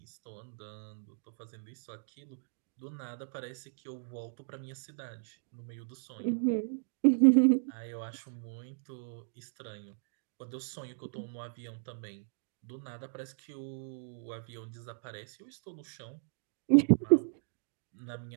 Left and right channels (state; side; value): silent; left; digital silence